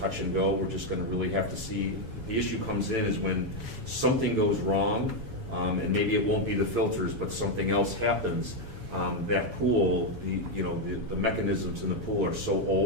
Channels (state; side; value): late; left; 7.1 ms